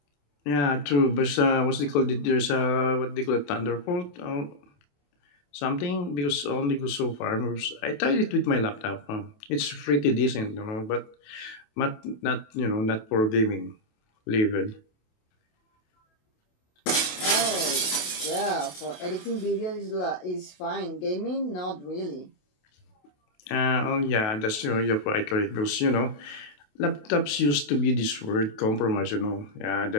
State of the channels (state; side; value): late; right; 28 ms